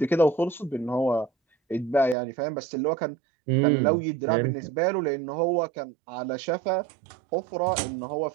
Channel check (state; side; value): drops out; left; at 2.1 s